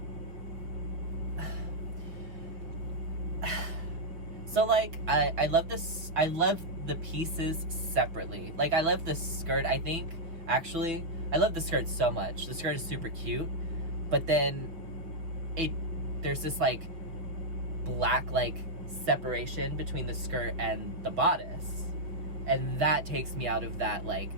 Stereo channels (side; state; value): left; late; 5.7 ms